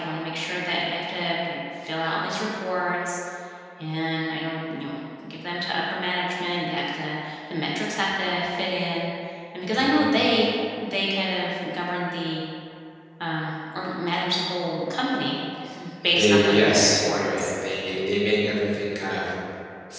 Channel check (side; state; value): both; identical; correlation 1.00